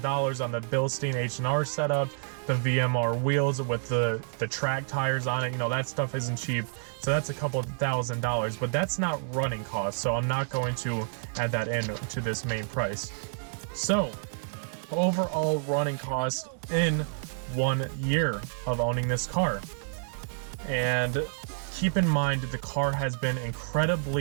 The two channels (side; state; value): left; silent; digital silence